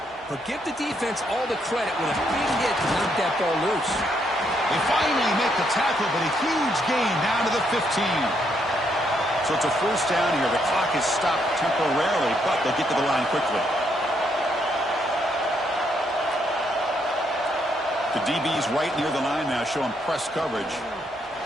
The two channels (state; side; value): normal; both; correlation 0.75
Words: But give the defense all the credit with a big hit to knock that ball loose. They finally make the tackle, but a huge gain down to the 15. So it's a first down here. The clock is stopped temporarily, but they'll get to the line quickly. The DB's right near the line now, showing press coverage.